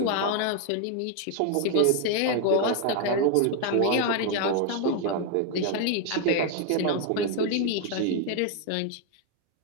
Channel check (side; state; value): both; different; correlation 0.01